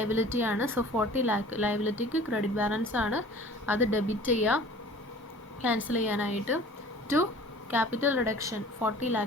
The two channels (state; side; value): normal; both; correlation 0.46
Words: ആണ്. സോ 40 lakh ലയബിലിറ്റിക്ക് ക്രെഡിറ്റ് ബാലൻസ് ആണ്. അത് ഡെബിറ്റ് ചെയ്യുക ക്യാൻസൽ ചെയ്യാനായിട്ട്. ടു ക്യാപിറ്റൽ റിഡക്ഷൻ 40